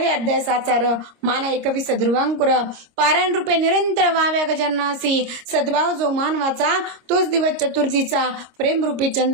अध्याय साचार, माना 21 ध्रुवांकुर. पारायण रूपे निरंतर व्हाव्या गजाननासी. सद्भाव जो मानवाचा तोच दिवस चतुर्थीचा. प्रेमरूपी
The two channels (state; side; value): late; left; 25 ms